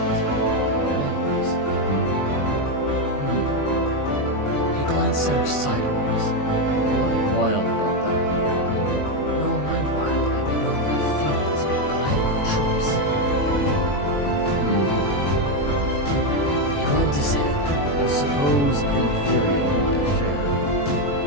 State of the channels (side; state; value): right; late; 21 ms